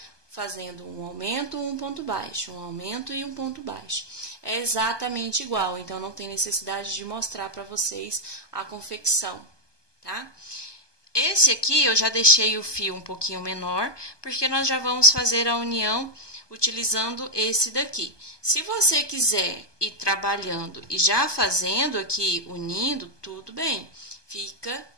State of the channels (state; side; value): late; right; 1.2 ms